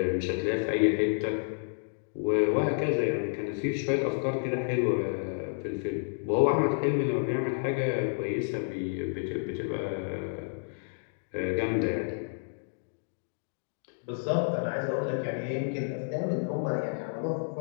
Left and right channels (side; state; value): right; silent; digital silence